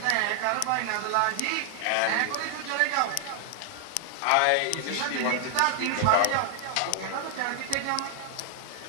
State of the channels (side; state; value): both; different; correlation 0.00